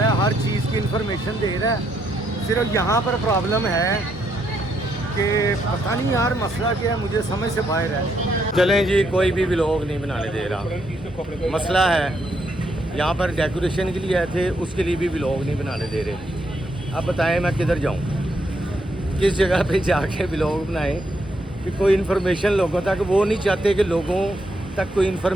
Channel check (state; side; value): normal; both; correlation 0.76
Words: है, हर चीज़ की इंफॉर्मेशन दे रहा है। सिर्फ यहाँ पर प्रॉब्लम है कि पता नहीं यार मसला क्या है, मुझे समझ से बाहर है। चलें जी, कोई भी व्लॉग नहीं बनाने दे रहा। मसला है यहाँ पर डेकोरेशन के लिए आए थे, उसके लिए भी व्लॉग नहीं बनाने दे रहे। अब बताएं मैं किधर जाऊँ, किस जगह पे जाके व्लॉग बनाएं कि कोई इन्फॉर्मेशन लोगों तक, वो नहीं चाहते कि लोगों तक कोई